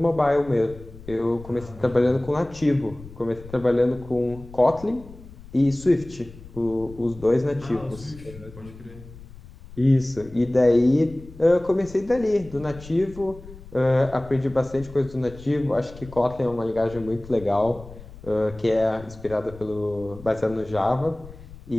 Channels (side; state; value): left; noise; rumble, 18 dB below the sound